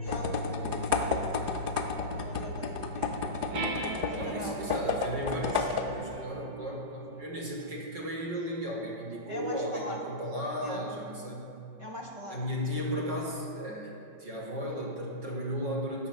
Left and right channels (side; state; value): left; late; 5.5 ms